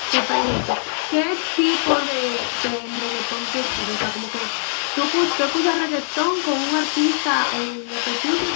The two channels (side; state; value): right; silent; 64 dB below the other